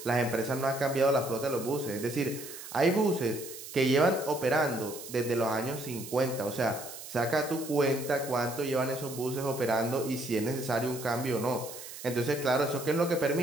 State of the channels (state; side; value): noise; right; hiss, 12 dB below the sound